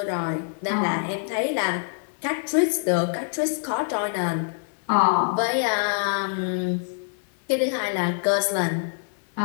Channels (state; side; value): silent; right; digital silence